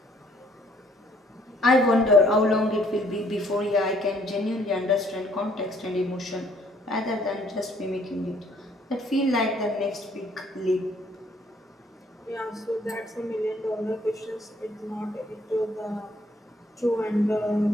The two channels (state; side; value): normal; both; correlation 0.63